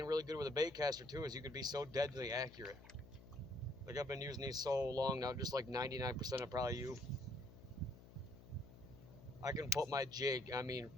really good with a bait caster too, is you could be so deadly accurate. Like I've been using these so long now, just like 99% of probably you. I can put my jig, I mean,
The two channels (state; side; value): noise; left; hum, 18 dB below the sound